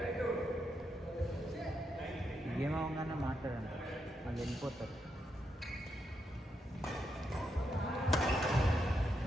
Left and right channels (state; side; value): normal; both; correlation 0.82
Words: ఏమవగానే మాట్లాడండి. అది వెళ్ళిపోతారు.